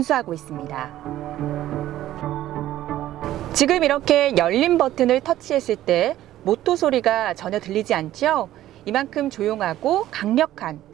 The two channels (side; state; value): left; quieter; 13.7 dB